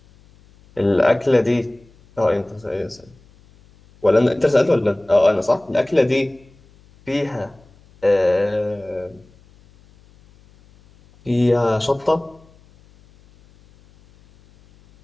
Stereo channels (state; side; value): noise; left; hum, 29 dB below the sound